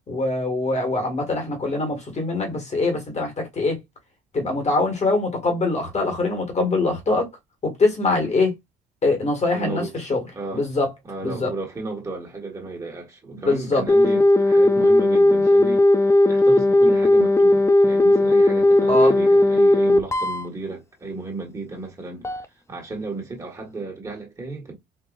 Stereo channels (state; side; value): normal; both; correlation 0.86